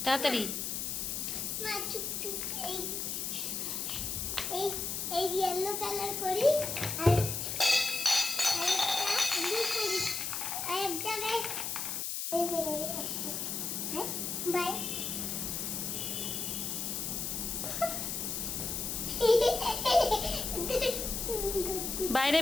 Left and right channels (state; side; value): noise; left; hiss, 2 dB below the sound